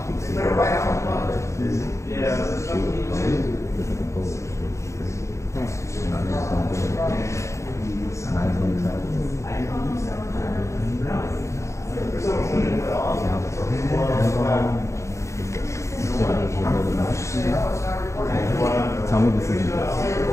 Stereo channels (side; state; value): right; late; 0.14 ms